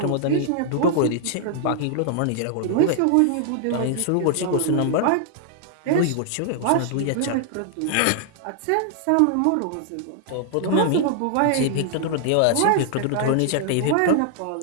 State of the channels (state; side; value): different; both; correlation -0.01